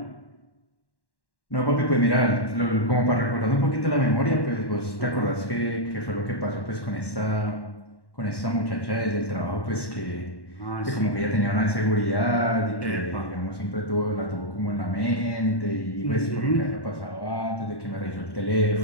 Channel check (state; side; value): late; right; 1.1 ms